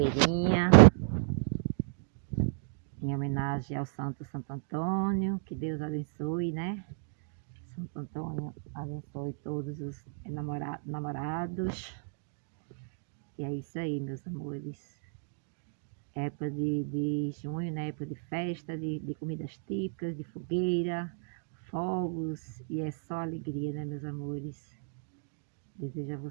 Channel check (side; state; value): left; silent; digital silence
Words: Em homenagem ao Santo Antônio. Que Deus abençoe, né? Santo Antônio abençoe todos os namorados. E é isso aí, meus amores. Época de junho, né? Época de festa, de comidas típicas, de fogueira, fogos, e é só alegria, né, meus amores? Desejo a